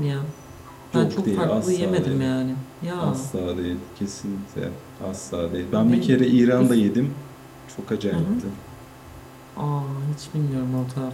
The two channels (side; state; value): both; identical; correlation 1.00